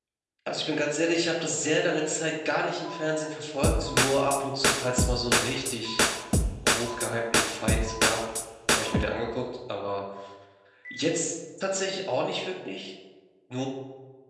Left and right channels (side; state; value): both; identical; correlation 1.00